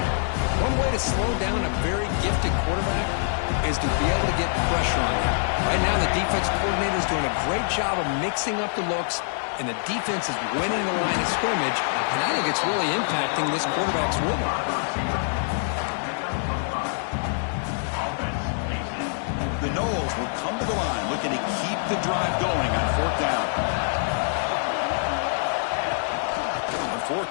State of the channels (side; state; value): right; silent; digital silence